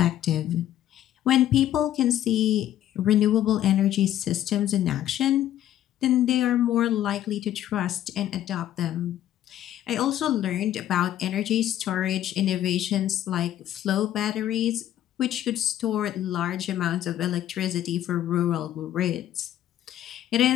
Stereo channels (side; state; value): right; quieter; 12.1 dB